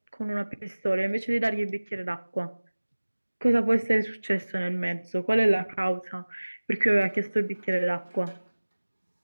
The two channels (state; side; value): inverted; both; correlation -1.00